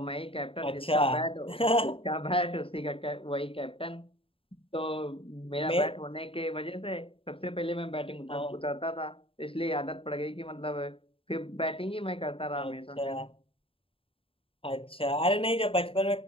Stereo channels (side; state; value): right; late; 0.27 ms